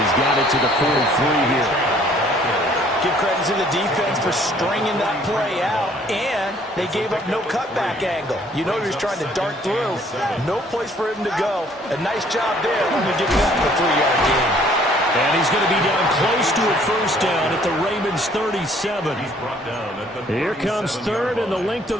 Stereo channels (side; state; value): both; normal; correlation 0.60